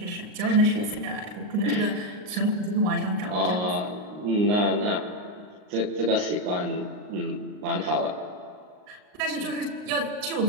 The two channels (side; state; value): left; late; 39 ms